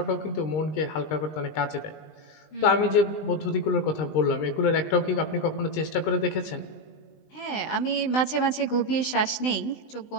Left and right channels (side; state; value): right; late; 20 ms